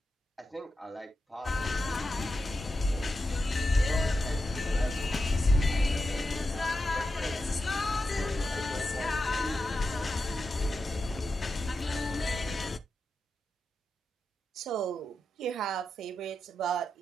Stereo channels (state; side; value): normal; both; correlation 0.89